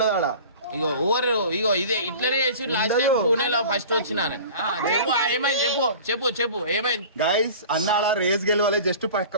ఆడ. ఇగో ఓవర్ ఇగో ఇదే ఇట్లనే చేసి లాస్ట్ టైం పూణేలో ఫస్ట్ వచ్చినాను. చెప్పు ఏమైంది? చెప్పు చెప్పు చెప్పు ఏమైంది? గైస్ అన్న అలా రేస్ గెలవాలి, జస్ట్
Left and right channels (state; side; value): inverted; both; correlation -0.40